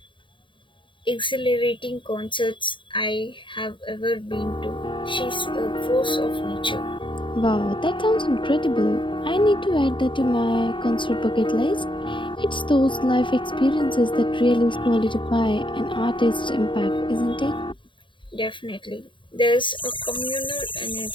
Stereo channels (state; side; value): late; right; 0.24 ms